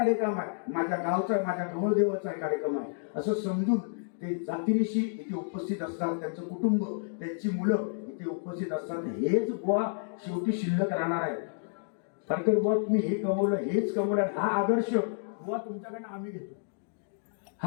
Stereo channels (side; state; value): right; silent; digital silence